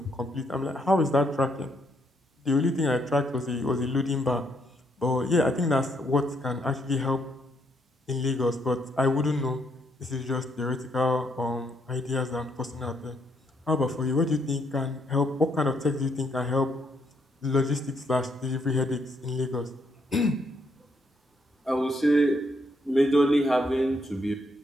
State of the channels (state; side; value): normal; both; correlation 0.74